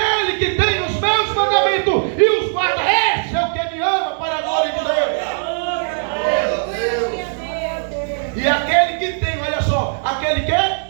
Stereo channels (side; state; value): left; silent; digital silence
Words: que tem os meus mandamentos e os guarda, esse é o que me ama, para a glória de Deus. E aquele que tem, olha só, aquele que